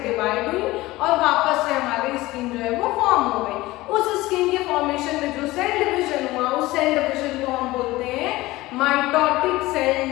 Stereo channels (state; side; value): quieter; right; 18.8 dB